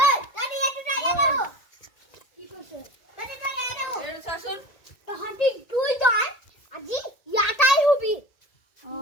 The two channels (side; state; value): right; late; 1.8 ms